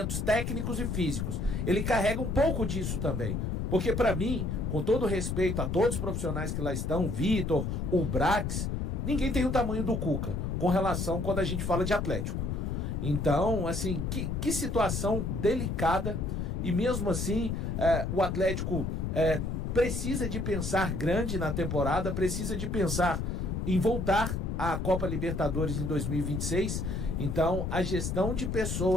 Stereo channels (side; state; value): left; noise; rumble, 2 dB below the sound